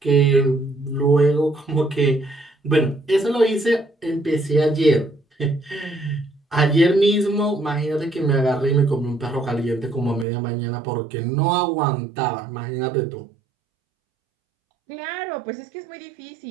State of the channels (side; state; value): left; drops out; at 10.2 s